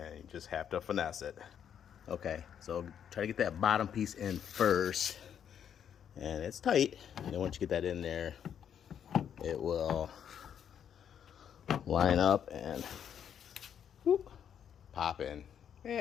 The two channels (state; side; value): quieter; right; 8.7 dB